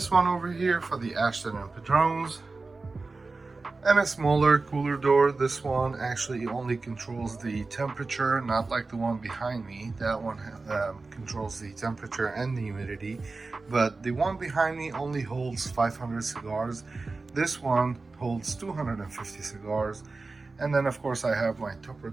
one over here for the Ashton and Padrones, and a smaller cooler door. This one actually only controls the temperature, not like the one behind me. That one controls the temperature and the humidity, but the one behind me only holds 500 cigars. This one holds 250 cigars. And then of course I have my tupper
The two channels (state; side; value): quieter; left; 3.7 dB